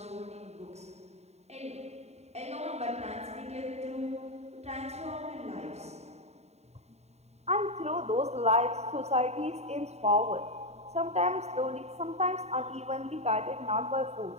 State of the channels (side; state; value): left; late; 0.32 ms